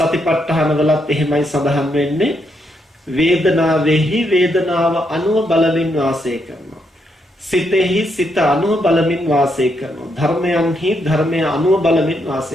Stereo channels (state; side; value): normal; both; correlation 0.78